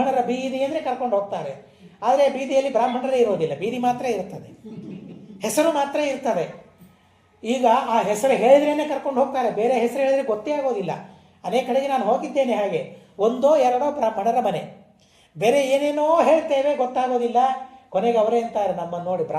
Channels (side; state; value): both; identical; correlation 1.00